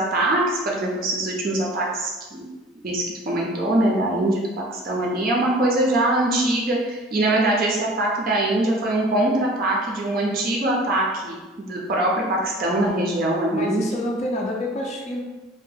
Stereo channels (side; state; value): both; normal; correlation 0.44